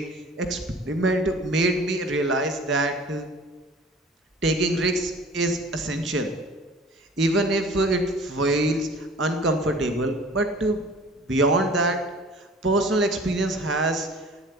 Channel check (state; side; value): normal; both; correlation 0.46